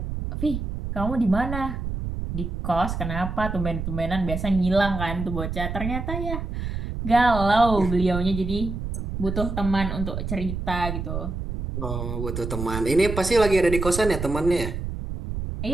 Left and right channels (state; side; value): noise; right; rumble, 5 dB below the sound